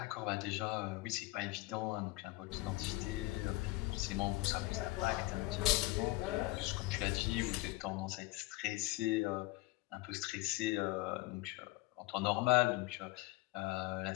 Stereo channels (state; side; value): quieter; right; 20.3 dB